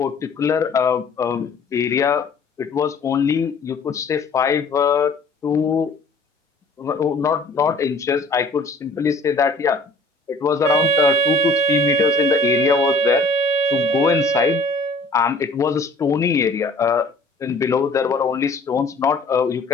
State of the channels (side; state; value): right; quieter; 3.3 dB